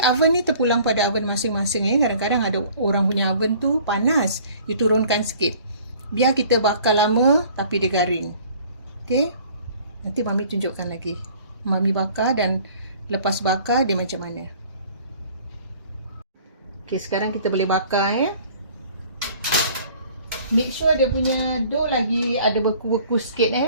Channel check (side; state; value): both; inverted; correlation -0.52